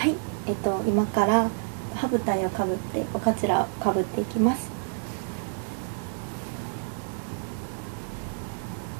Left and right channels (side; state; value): left; silent; digital silence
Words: い、今から歯舞台をかぶっておかつらをかぶっていきます。